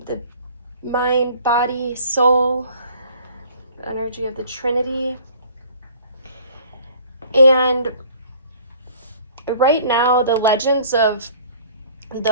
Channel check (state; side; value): inverted; both; correlation -0.52